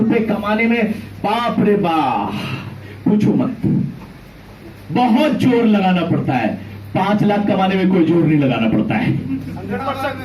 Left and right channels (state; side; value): identical; both; correlation 1.00